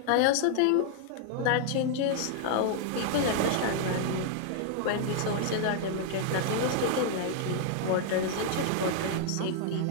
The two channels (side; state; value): both; different; correlation -0.01